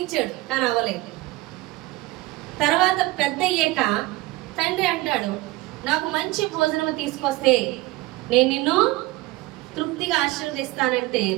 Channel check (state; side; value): quieter; left; 19.4 dB